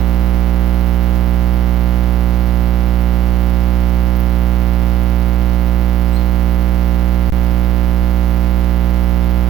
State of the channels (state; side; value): quieter; left; 12.2 dB